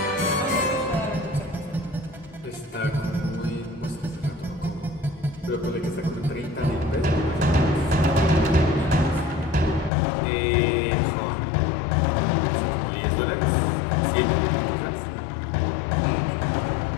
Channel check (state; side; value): drops out; right; at 9.9 s